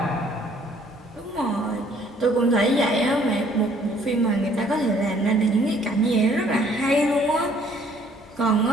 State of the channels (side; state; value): both; normal; correlation 0.60